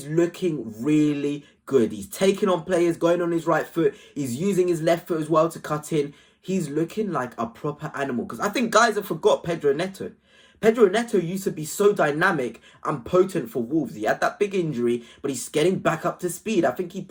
looking really good. He's taking on players, going on his right foot. He's using his left foot as well to cut in. He's looking like a proper animal. Because I think guys have forgot Pedro Neto. Pedro Neto used to be so dynamic and potent for Wolves. He had that big injury, but he's getting back up to speed. I think he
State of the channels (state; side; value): identical; both; correlation 1.00